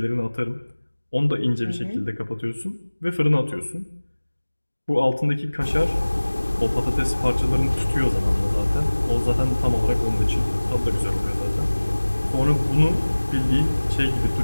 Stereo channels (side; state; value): both; inverted; correlation -1.00